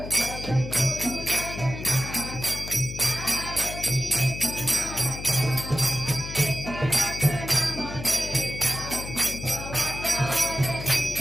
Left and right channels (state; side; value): noise; left; hum, 9 dB below the sound